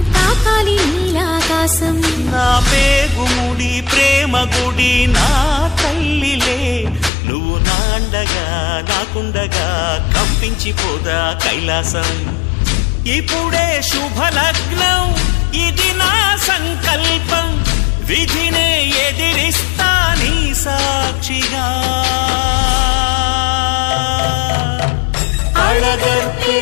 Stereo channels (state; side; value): drops out; right; at 7.1 s